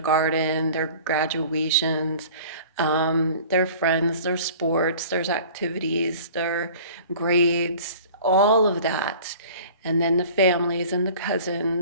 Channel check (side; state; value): both; inverted; correlation -0.45